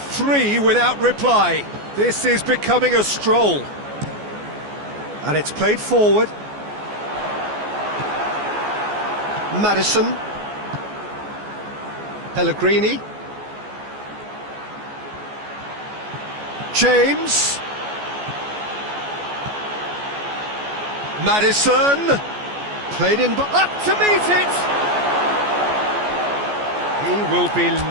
Three without reply. This is becoming a stroll. And it's played forward. Maddison. Pellegrini. James. Maddison. Played in, up to meet it. He will be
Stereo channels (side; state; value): left; late; 14 ms